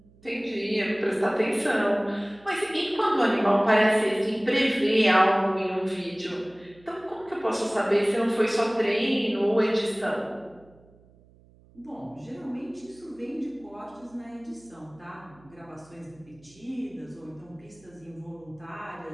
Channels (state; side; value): noise; right; hum, 28 dB below the sound